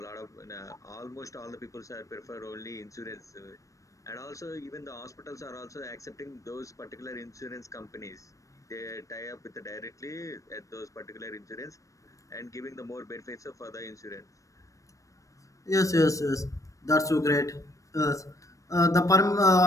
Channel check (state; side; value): late; right; 0.16 ms